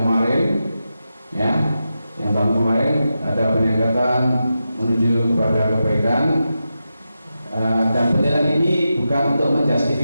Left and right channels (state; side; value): inverted; both; correlation -0.90